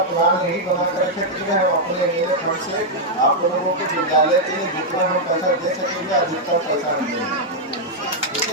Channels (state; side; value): normal; both; correlation -0.03